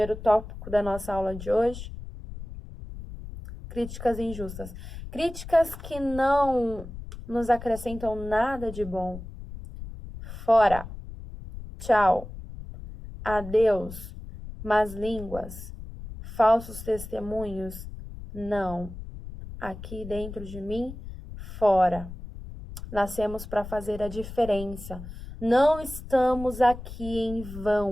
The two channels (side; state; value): left; noise; rumble, 12 dB below the sound